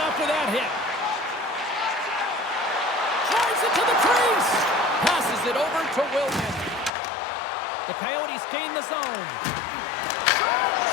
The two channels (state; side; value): drops out; right; at 6.9 s